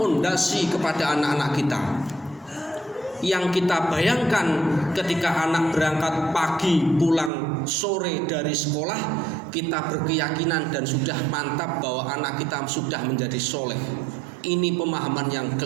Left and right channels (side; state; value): left; drops out; at 7.3 s